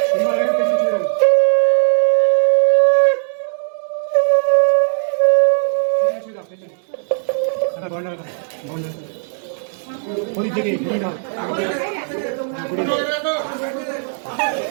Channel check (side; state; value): left; silent; digital silence